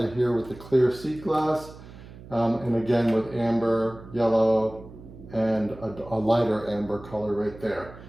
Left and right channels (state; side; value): noise; right; hum, 18 dB below the sound